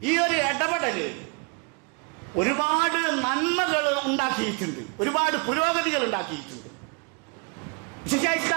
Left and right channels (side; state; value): left; quieter; 33.7 dB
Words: ഈ ഒരു ഇടപെടല് ഒരുപാട് നന്മകൾ ഉണ്ടാക്കിയിട്ടുണ്ട്, ഒരുപാട് പുരോഗതികൾ ഉണ്ടാക്കിയിട്ടുണ്ട്,